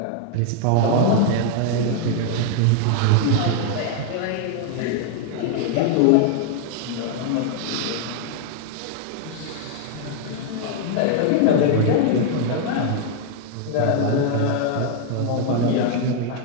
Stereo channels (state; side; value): different; both; correlation 0.00